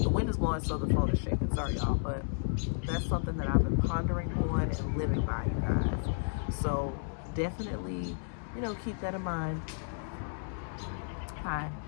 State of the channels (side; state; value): right; silent; digital silence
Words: The wind is blowing, so the phone is shaking. Sorry, y'all, but that's something that I've been pondering on and living by, you guys. So definitely, you know, keep that in mind. Hi.